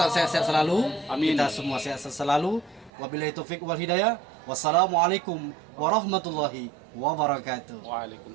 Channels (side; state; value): left; drops out; at 2.9 s